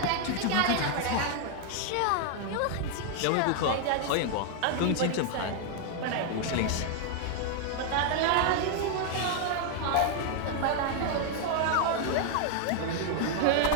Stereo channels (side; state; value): both; different; correlation 0.00